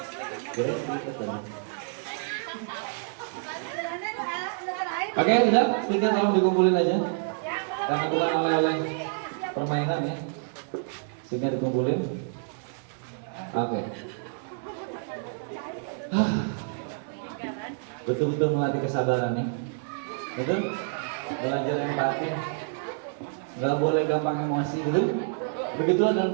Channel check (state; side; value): silent; left; digital silence